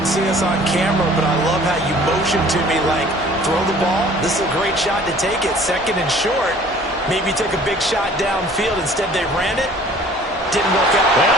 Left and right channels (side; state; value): both; normal; correlation 0.51